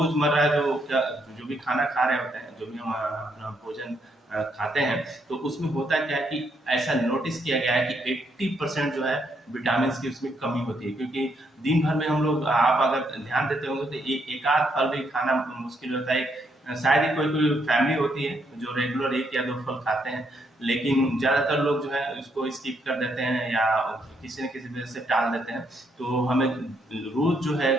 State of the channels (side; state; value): both; normal; correlation 0.75